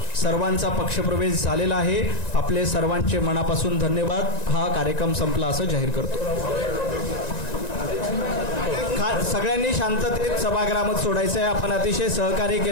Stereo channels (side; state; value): right; late; 1.9 ms